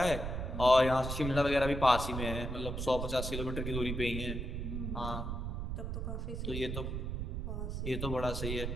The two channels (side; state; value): right; noise; rumble, 3 dB below the sound